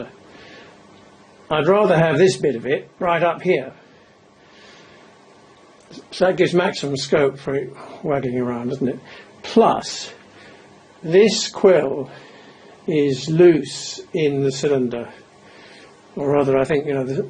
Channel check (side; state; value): both; identical; correlation 1.00